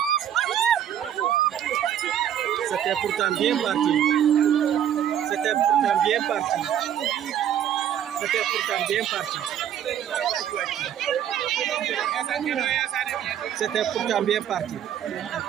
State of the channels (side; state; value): left; quieter; 10.1 dB